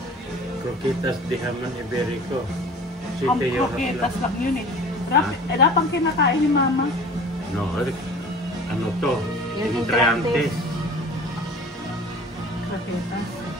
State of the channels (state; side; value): normal; both; correlation 0.43